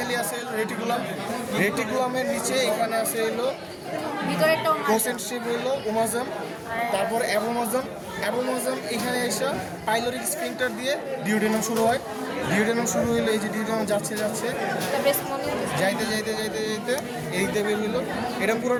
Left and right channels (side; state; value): both; identical; correlation 1.00